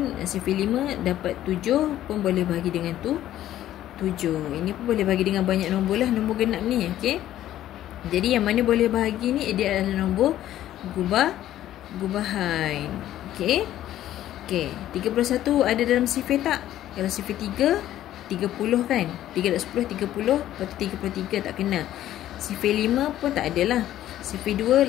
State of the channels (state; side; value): quieter; right; 12.8 dB